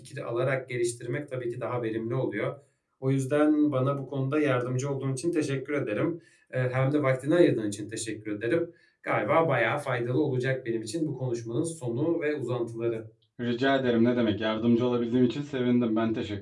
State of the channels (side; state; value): both; identical; correlation 1.00